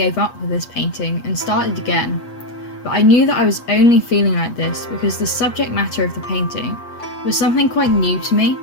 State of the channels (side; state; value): right; late; 8.3 ms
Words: up with this painting and started again, but I knew that I was only feeling like this because the subject matter of the painting was something quite new to me.